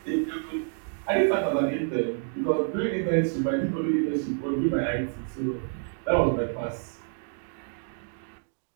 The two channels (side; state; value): left; silent; 59 dB below the other